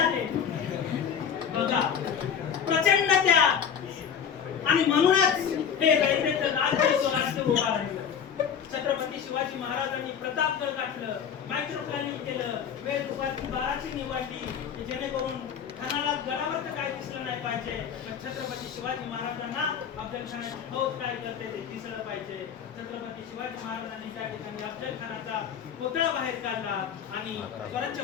बघा, प्रचंड त्याग. आणि म्हणूनच हे रयतेचं राज्य स्वराज्य उभा राहिलं. छत्रपती शिवाजी महाराजांनी प्रतापगड गाठलं, मायक्रो प्लॅनिंग केलं, वेळ दुपारची 12ची निवडली, जेणेकरून खानाला गडावर तर काय दिसलं नाही पाहिजे, पण छत्रपती शिवाजी महाराजांना अफजल खानाची फौज काय करते ते दिसलं पाहिजे. छत्रपती शिवाजी महाराजांनी त्या ठिकाणी अफजल खानाचा कोतळा बाहेर काढला आणि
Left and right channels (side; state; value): right; quieter; 7.8 dB